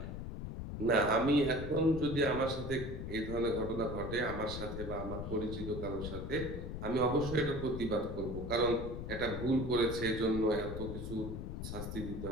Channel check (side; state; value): left; noise; rumble, 6 dB below the sound